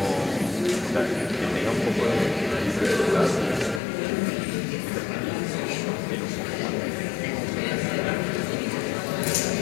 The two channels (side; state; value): right; drops out; at 3.8 s